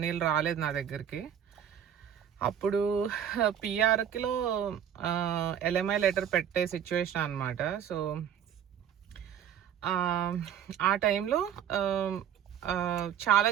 రాలేదు నా దగ్గరికి. అప్పుడు పిఆర్కిలో ఎల్ఎంఐ లెటర్ పెట్టే సిచ్యువేషన్ అనమాట. సో ఆ టైంలో చాలా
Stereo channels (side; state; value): left; quieter; 9.2 dB